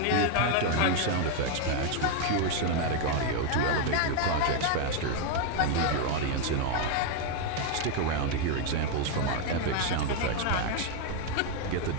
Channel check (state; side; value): different; both; correlation 0.01